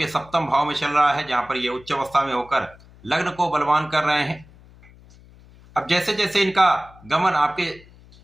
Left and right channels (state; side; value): noise; left; hum, 24 dB below the sound